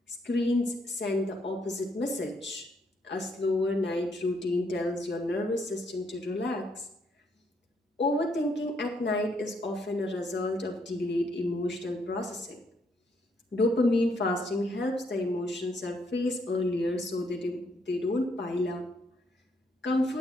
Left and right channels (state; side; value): normal; both; correlation 0.72